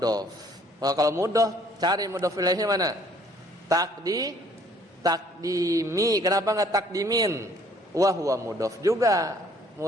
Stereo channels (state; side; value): normal; both; correlation 0.60